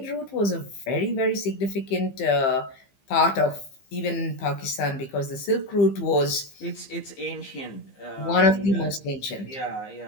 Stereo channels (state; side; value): late; right; 15 ms